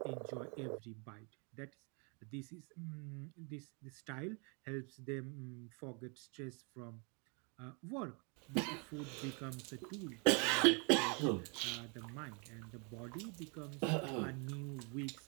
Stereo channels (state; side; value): quieter; left; 34.8 dB